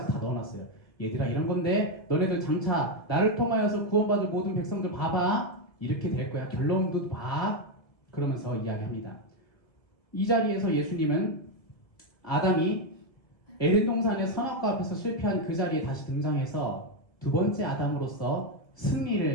다 넣어놨어요. 얘들아 이런 건데 너네들 장차 나를 통하여서 구원받을 모든 백성들 봐봐. 이렇게 될 거야. 결론도 봐. 그러면서 이야기합니다. 이 자리에서 예수님은 아담이 에덴 동산의 선악과 앞에서 실패한 그 자리에 다시 등장해서 두 번째 아담으로서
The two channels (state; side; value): late; right; 1.9 ms